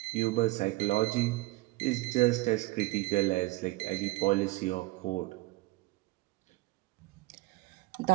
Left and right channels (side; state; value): left; quieter; 21.1 dB